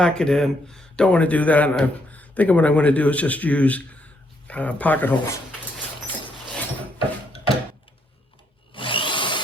it in. Don't want to do that. And I'm thinking what I'm going to do is just use pocket holes.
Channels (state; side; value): normal; both; correlation 0.74